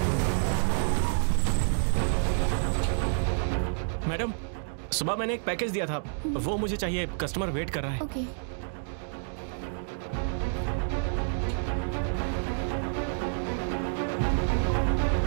Madam, सुबह मैंने एक package दिया था, वो मुझे चाहिए। Customer wait कर रहा है। ओके।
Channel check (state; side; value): silent; left; digital silence